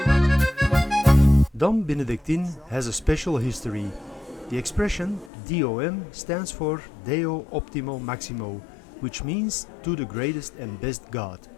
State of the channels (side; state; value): right; drops out; at 5.3 s